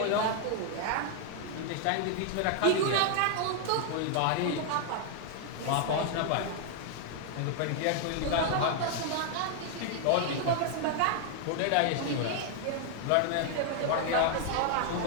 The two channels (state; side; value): different; both; correlation 0.00